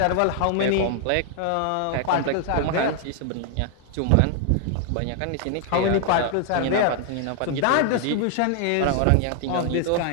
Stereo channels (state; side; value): different; both; correlation 0.00